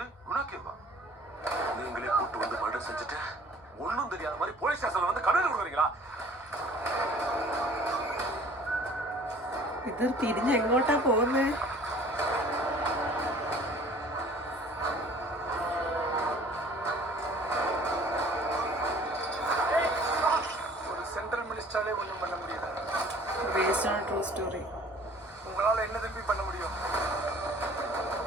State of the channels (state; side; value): normal; both; correlation 0.51